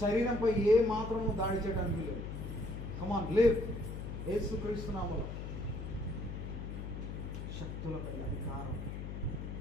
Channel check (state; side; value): noise; left; hum, 6 dB below the sound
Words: శరీరంపై ఏ మాత్రము దాడి చేయడానికి వీలు. కమాన్ లివ్. యేసు క్రీస్తు నామములో శక్తులపై అధికారం